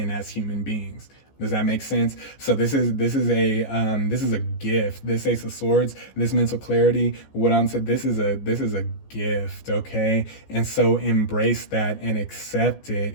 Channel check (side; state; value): right; late; 14 ms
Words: as human beings. Does that make sense? So this is a gift. This Ace of Swords, this mental clarity, what I'm saying, this is a gift, okay? And so embrace that and accept